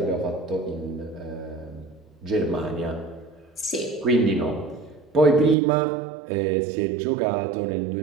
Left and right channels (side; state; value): left; drops out; at 5.6 s